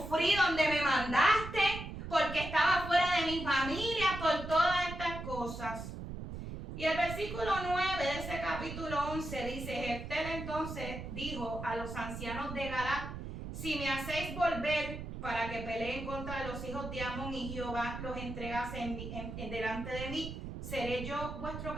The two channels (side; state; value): right; noise; rumble, 8 dB below the sound